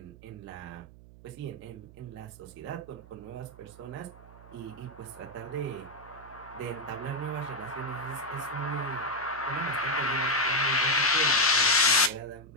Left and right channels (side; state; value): right; noise; hum, 20 dB below the sound